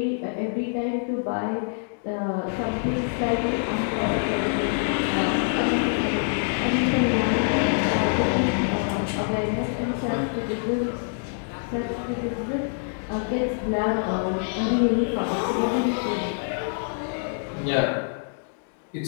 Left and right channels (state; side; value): silent; right; digital silence